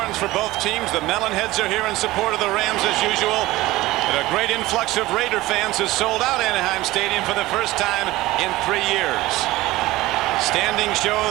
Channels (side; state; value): left; quieter; 18.1 dB